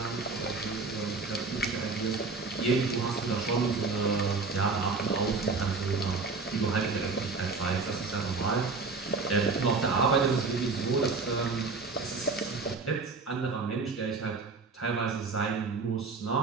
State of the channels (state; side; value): quieter; left; 4.2 dB